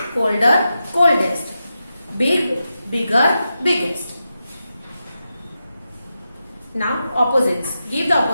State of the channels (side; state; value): both; inverted; correlation -0.89